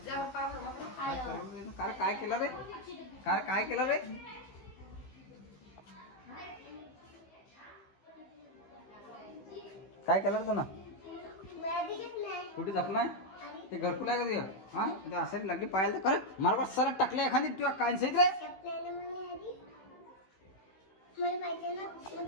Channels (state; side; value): late; right; 16 ms